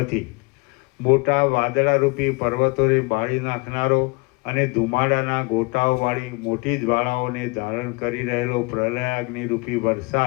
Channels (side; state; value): right; quieter; 28.5 dB